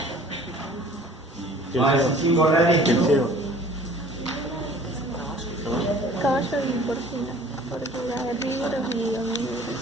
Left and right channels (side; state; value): both; normal; correlation 0.50